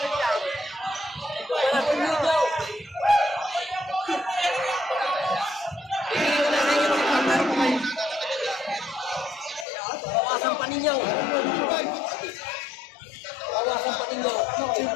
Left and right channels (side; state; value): right; drops out; at 9.7 s